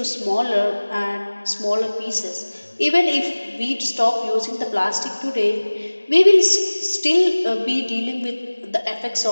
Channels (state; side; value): inverted; both; correlation -1.00